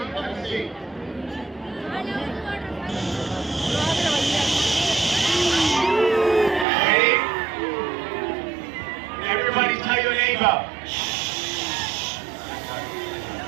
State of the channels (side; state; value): left; drops out; at 6.7 s